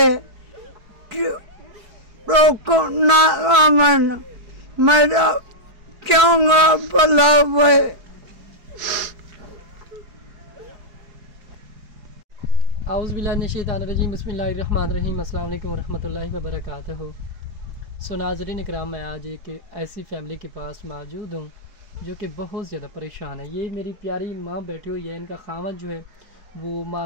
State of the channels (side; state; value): left; late; 4.6 ms